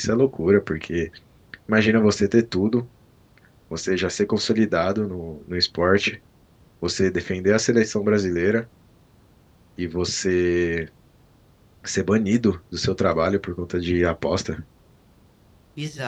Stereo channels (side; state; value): both; identical; correlation 1.00